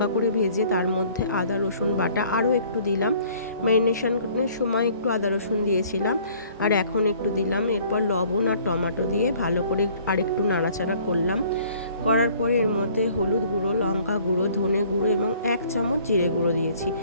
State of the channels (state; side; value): inverted; both; correlation -0.56